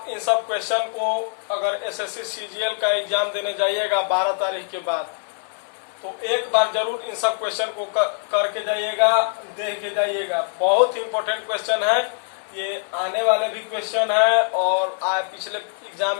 इन सब क्वेश्चन को अगर एसएससी सीजीएल का एग्जाम देने जाइएगा 12 तारीख के बाद, तो एक बार जरूर इन सब क्वेश्चन को करके जाइएगा, देख के जाइएगा। बहुत ही इम्पोर्टेंट क्वेश्चन है, ये आने वाले भी क्वेश्चन है और पिछले एग्जाम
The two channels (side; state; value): right; silent; 63 dB below the other